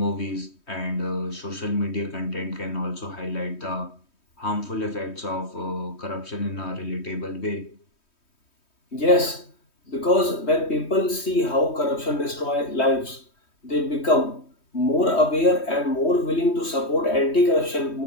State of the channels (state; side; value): late; right; 3.2 ms